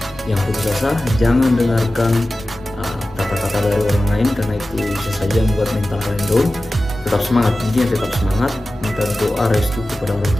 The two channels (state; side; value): normal; both; correlation 0.95